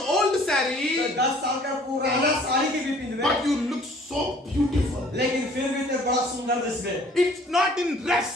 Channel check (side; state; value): both; normal; correlation 0.55